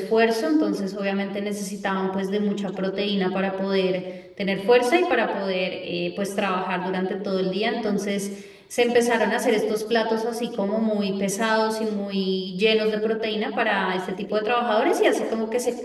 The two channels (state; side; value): identical; both; correlation 1.00